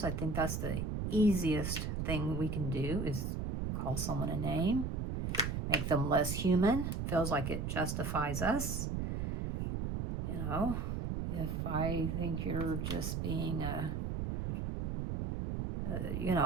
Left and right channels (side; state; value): right; noise; rumble, 2 dB below the sound